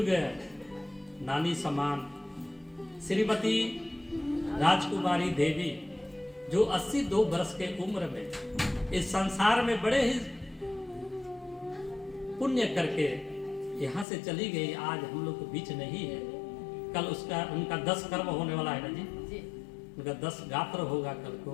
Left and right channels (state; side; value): drops out; right; at 14.1 s